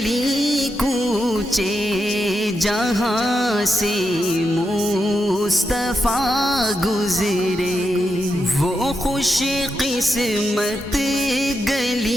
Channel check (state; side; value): normal; both; correlation 0.86